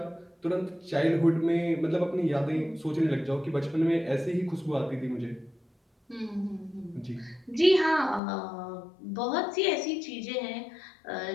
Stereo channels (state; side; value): drops out; right; at 8.2 s